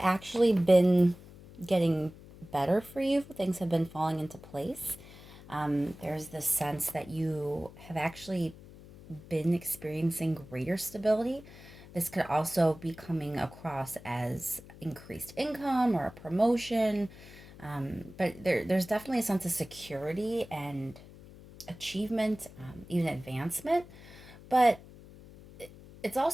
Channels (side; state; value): left; noise; hum, 19 dB below the sound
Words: actually been getting better for you. Things have been falling into place. There's this sense that you have actually been experiencing greater stability. This could also be coming across as increased income or a promotion. But there's definitely a sense of security and achievement, even advancement. But it's